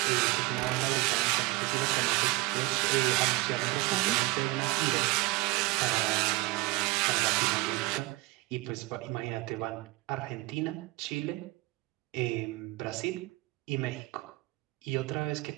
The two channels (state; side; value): quieter; left; 21.2 dB